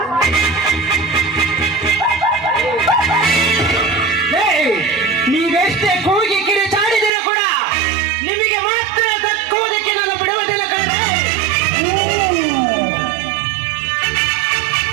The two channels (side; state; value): left; drops out; at 7.1 s